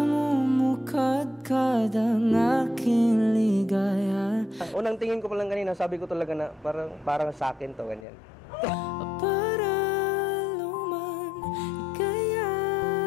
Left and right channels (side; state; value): right; drops out; at 8.1 s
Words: ang aking ligaya. Unang tingin ko pa lang kanina, sabi ko talaga na parang sa akin to, ganyan. Para luman, ika'y